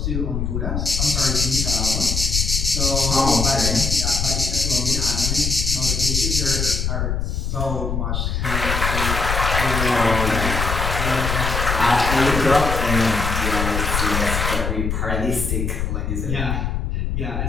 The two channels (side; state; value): left; noise; rumble, 1 dB below the sound